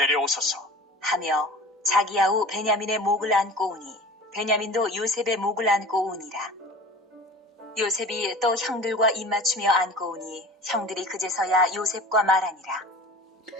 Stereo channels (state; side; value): normal; both; correlation 0.39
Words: 하며 자기 아우 베냐민의 목을 안고 오니 베냐민도 요셉의 목을 안고 오니라. 요셉이 또 형들과 입맞추며 안고 오니 형들이 그제서야 요셉과 말하니라.